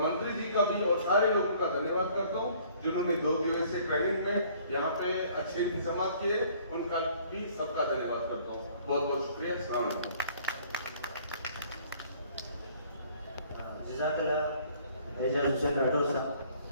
जी का भी और सारे लोगों का धन्यवाद करता हूँ जिन्होंने 2 दिवसीय ट्रेनिंग में यहाँ पे अच्छे इंतजाम किए, उनका भी सबका धन्यवाद करता हूँ। बहुत बहुत शुक्रिया। अस्सलाम वालेकुम। जज़ाकल्लाह एजाजुद्दीन राठौर साहब।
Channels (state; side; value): inverted; both; correlation -0.57